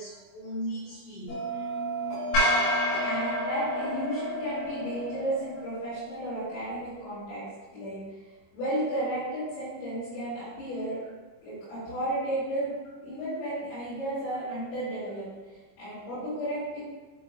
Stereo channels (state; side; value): late; right; 25 ms